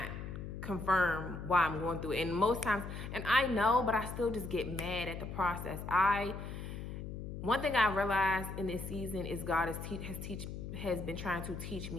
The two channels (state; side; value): noise; left; hum, 8 dB below the sound